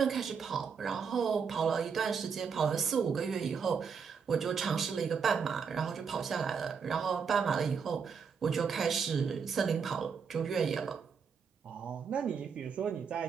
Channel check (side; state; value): left; quieter; 6.2 dB